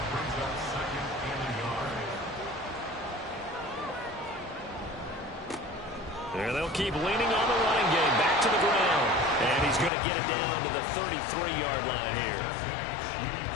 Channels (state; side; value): drops out; right; at 9.9 s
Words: And they'll keep leaning on the running game. Back to the ground. And he's going to get it down to the 33-yard line here.